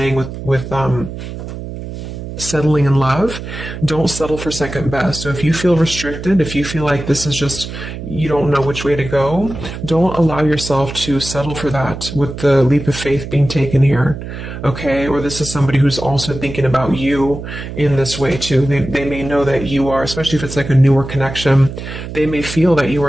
with settling in love. Don't settle for second best. So if you feel restricted, if you feel like this is just, you don't know which way to go, don't allow yourself to settle for that with the leap of faith being taken here. Okay. Or this is somebody who's also thinking about you in this way too. They may know that you are, especially if it's like a newer connection, they may feel that you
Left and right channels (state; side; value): noise; right; hum, 9 dB below the sound